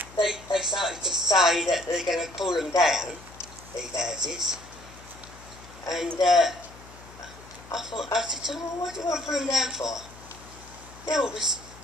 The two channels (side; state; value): left; noise; hum, 20 dB below the sound